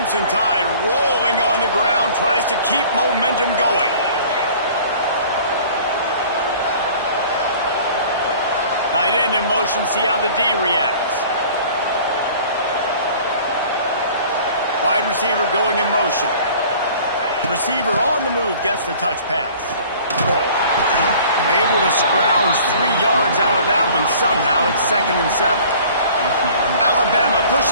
Tide rolling on the ground, tries to keep momentum going. Tight end in motion, see how the D reacts. Wide receiver going in motion. Receiver on the move, gets the touch pass. Able to scrounge 3 yards out of that one somehow. It's 2nd and 7. Alabama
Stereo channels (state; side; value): inverted; both; correlation -0.48